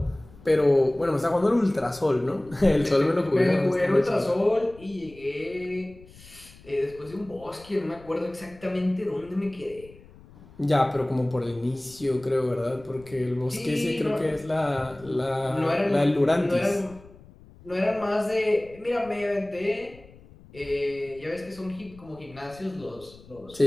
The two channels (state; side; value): noise; left; rumble, 22 dB below the sound